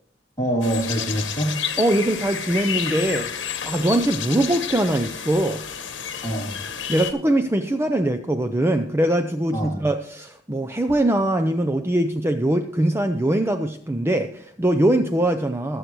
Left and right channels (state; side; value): normal; both; correlation 0.76